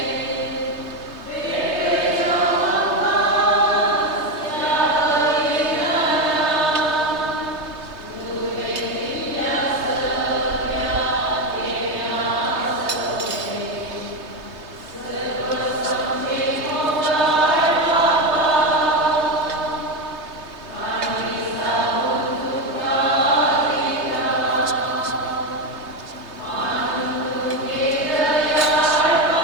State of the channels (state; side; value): late; left; 3.2 ms